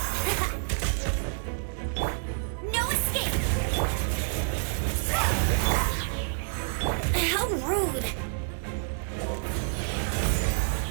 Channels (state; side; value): silent; left; digital silence